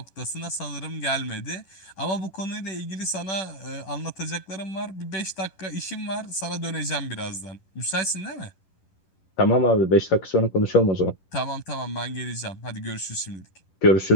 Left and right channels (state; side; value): late; right; 11 ms